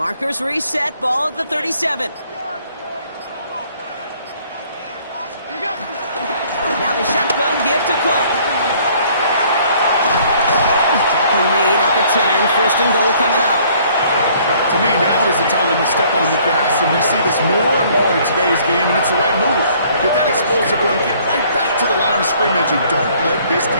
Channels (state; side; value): inverted; both; correlation -0.59